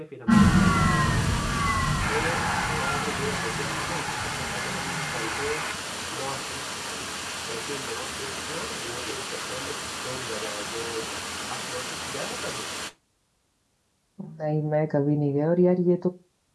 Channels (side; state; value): both; identical; correlation 1.00